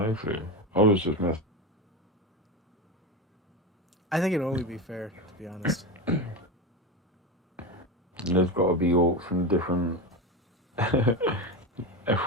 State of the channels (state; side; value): normal; both; correlation 0.19